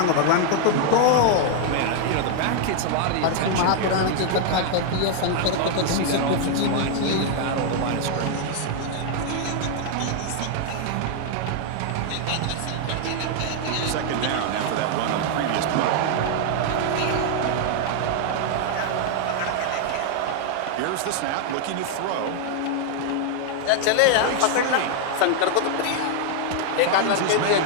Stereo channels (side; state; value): both; different; correlation 0.00